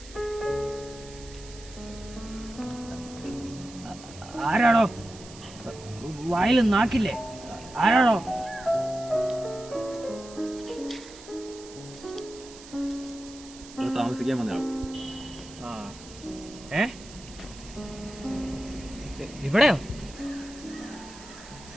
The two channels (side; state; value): right; noise; hiss, 18 dB below the sound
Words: ആരാടോ? വായിൽ നാക്കില്ലേ? ആരാടോ? താമസിക്കാൻ വന്നയാൾ. ഇവിടെയോ?